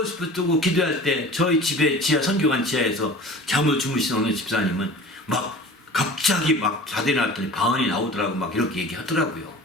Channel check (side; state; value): both; normal; correlation 0.41